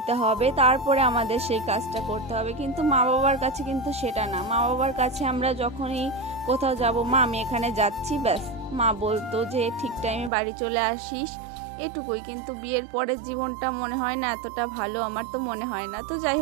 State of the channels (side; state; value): left; drops out; at 10.3 s